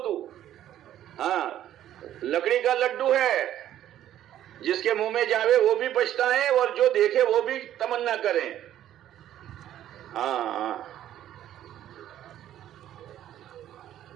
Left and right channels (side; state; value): left; quieter; 11.9 dB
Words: تو. ہاں لکڑی کا لڈو ہے، جس کے منہ میں جاوے وہ بھی پچھتائے اور جو دیکھے وہ بھی تمنا کریں. ہاں